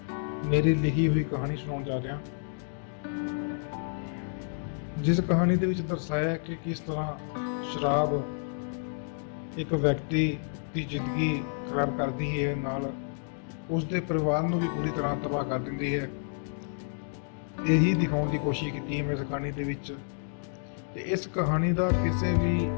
ਮੇਰੀ ਲਿਖੀ ਹੋਈ ਕਹਾਣੀ ਸੁਣਾਉਣ ਜਾ ਰਿਹਾ, ਜਿਸ ਕਹਾਣੀ ਦੇ ਵਿੱਚ ਦਰਸਾਇਆ ਹੈ ਕਿ ਕਿਸ ਤਰ੍ਹਾਂ ਸ਼ਰਾਬ ਇੱਕ ਵਿਅਕਤੀ ਦੀ ਜ਼ਿੰਦਗੀ ਖਰਾਬ ਕਰਦੀ ਹੈ, ਨਾਲ ਉਸ ਦੇ ਪਰਿਵਾਰ ਨੂੰ ਵੀ ਪੂਰੀ ਤਰ੍ਹਾਂ ਤਬਾਹ ਕਰ ਦਿੰਦੀ ਹੈ। ਇਹੀ ਦਿਖਾਉਣ ਦੀ ਕੋਸ਼ਿਸ਼ ਕੀਤੀ ਹੈ ਮੈਂ ਇਸ ਕਹਾਣੀ ਦੇ ਵਿੱਚ। ਤੇ ਇਸ ਕਹਾਣੀ ਦਾ ਕਿਸੇ ਵੀ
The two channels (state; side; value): silent; right; digital silence